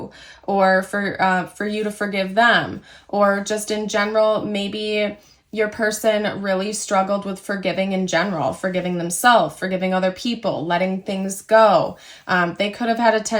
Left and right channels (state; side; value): identical; both; correlation 1.00